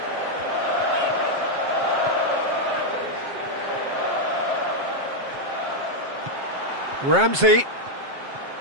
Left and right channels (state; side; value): late; left; 7.5 ms